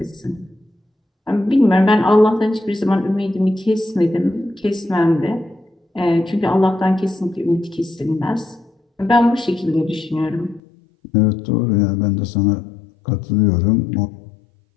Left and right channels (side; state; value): right; drops out; at 10.6 s